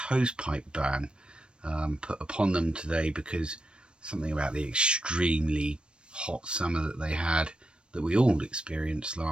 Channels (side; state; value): left; late; 0.056 ms